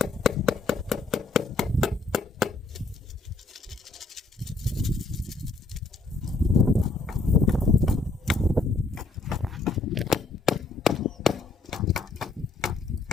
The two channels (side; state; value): right; quieter; 3.5 dB